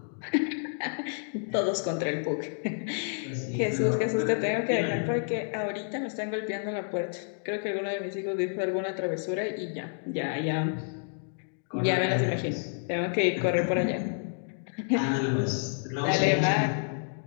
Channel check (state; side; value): silent; right; digital silence